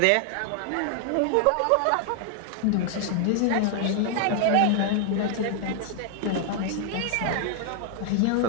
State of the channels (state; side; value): different; both; correlation 0.00